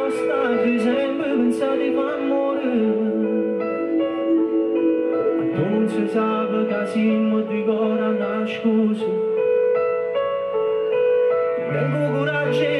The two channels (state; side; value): identical; both; correlation 1.00